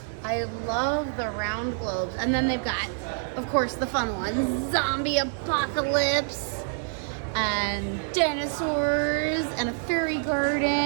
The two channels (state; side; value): silent; left; digital silence